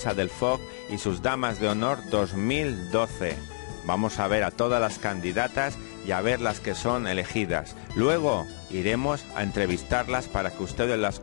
del foc y sus damas de honor 2012. Vamos a ver a todas las candidatas y a ver las que son elegidas. Luego iremos a entrevistarlas para que ustedes las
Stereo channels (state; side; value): silent; right; digital silence